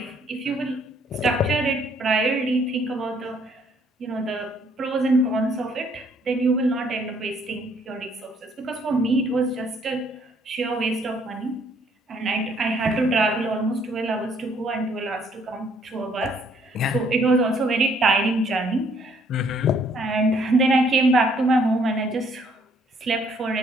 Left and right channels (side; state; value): both; normal; correlation 0.65